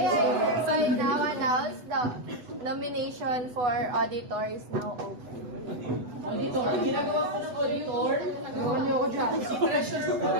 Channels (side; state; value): left; late; 8.0 ms